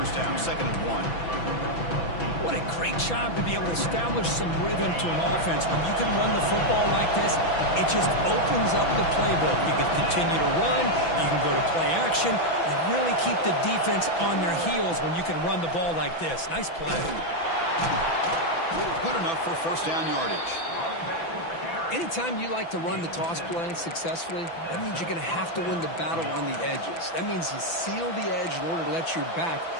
down, 2nd and 1. What a great job to be able to establish some rhythm to an offense. When you can run the football like this, it just opens up the playbook. You can continue to run, you can go to play action. You really keep the defense on their heels when you can run the ball like this. Nice play. Good enough for 1st down yardage. Anytime you like to run the toss play successfully, that means you're going to have to win the battle on the edges. That means you seal the edge in order to let your back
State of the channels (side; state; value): right; late; 6.0 ms